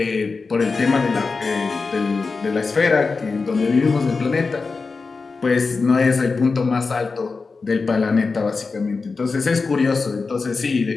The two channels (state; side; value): quieter; right; 4.3 dB